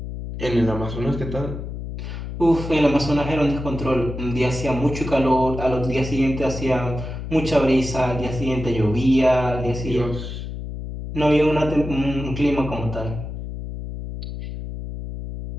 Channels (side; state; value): left; noise; hum, 7 dB below the sound